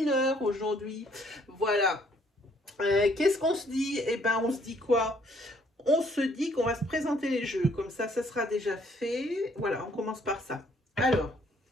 heure aujourd'hui. Voilà. Qu'est-ce qu'on se dit? Eh ben, on se dit quoi? On se dit qu'on va se présenter les jeux, comme ça sera déjà fait. Voilà, on commence par ça. Alors,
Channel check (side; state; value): both; normal; correlation 0.65